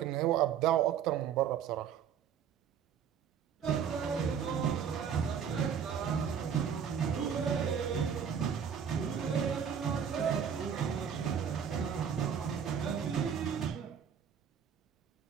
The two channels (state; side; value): quieter; left; 7.9 dB